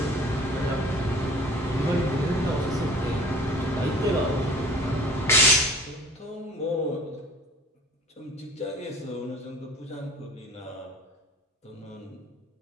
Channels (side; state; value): both; normal; correlation 0.47